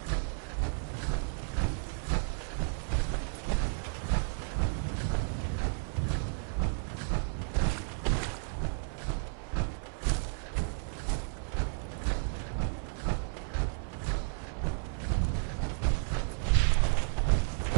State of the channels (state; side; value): silent; left; 55 dB below the other